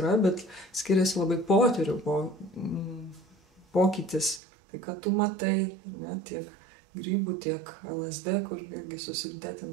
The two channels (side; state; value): left; drops out; at 4.4 s